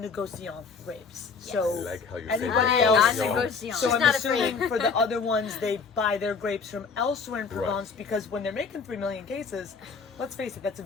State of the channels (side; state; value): right; quieter; 5.2 dB